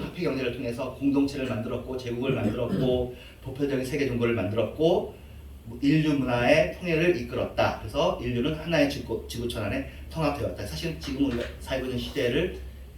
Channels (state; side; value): identical; both; correlation 1.00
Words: 화폐 경제를 통해서 공동체를 만들었고 제국을 만들었고 보편적인 세계 종교를 만들었고 인류 문화의 통일을 이끌었다. 그래서 인류는 하나의 지구촌 안에 통합되었다. 사실 지금 우리가 살고 있는 시대를